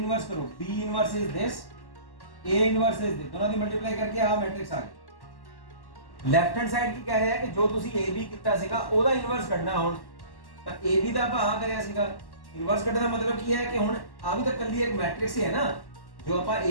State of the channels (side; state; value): right; late; 1.1 ms